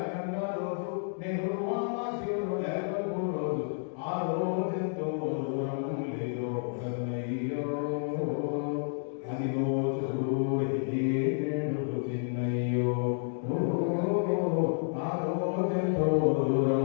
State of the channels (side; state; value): right; silent; digital silence